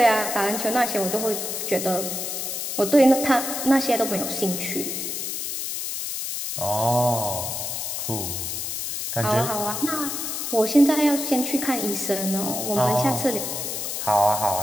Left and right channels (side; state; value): left; noise; hiss, 4 dB below the sound